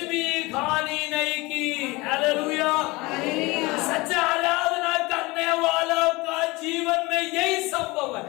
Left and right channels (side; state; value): right; quieter; 23.0 dB